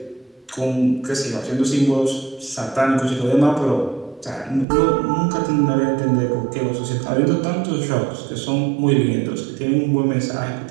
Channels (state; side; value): drops out; left; at 4.7 s